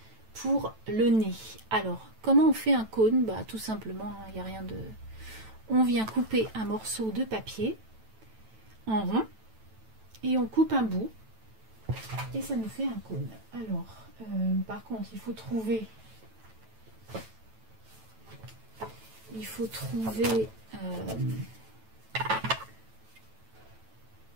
pour le nez. Alors, comment on fait un cône? Bah, tout simplement, il n'y a rien de... On vient couper un morceau de papier en rond et on coupe un bout et ça nous fait un cône. Alors, par contre, il faut trouver... Je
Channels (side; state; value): left; late; 9.1 ms